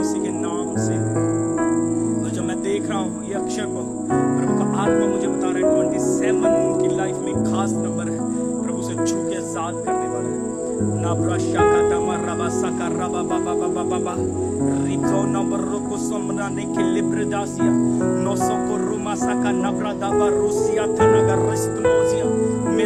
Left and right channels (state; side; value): identical; both; correlation 1.00